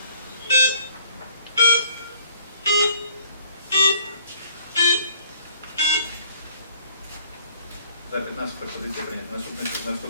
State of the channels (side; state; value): both; inverted; correlation -0.59